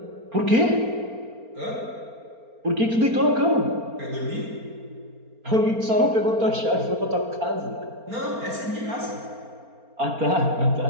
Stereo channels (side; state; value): left; late; 4.4 ms